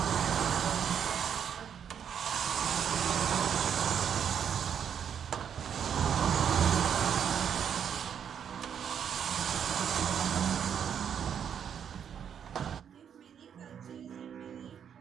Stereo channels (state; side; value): quieter; left; 8.2 dB